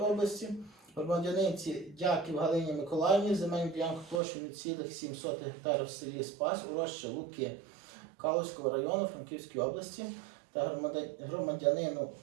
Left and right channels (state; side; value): drops out; left; at 4.2 s